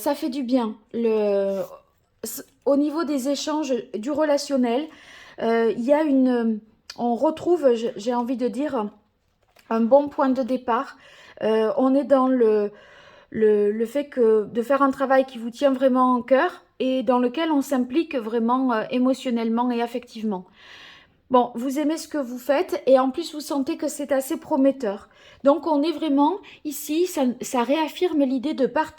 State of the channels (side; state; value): both; identical; correlation 1.00